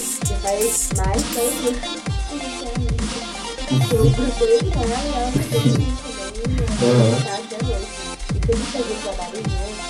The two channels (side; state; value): both; identical; correlation 1.00